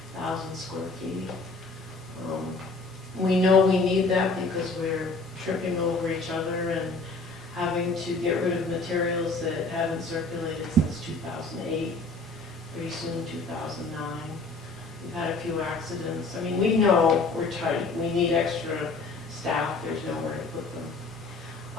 square feet. We know we need that because we're tripping over each other and having to get rid of materials that haven't circulated since 2008. pretty soon 2009. We've had a few accidents. I mean, we know we're tight, we need extra staff, there's nowhere to put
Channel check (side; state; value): right; quieter; 3.5 dB